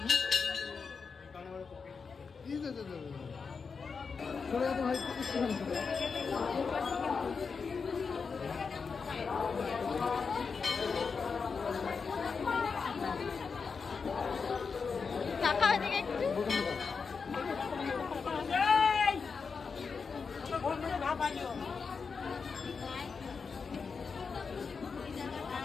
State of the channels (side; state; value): right; quieter; 5.3 dB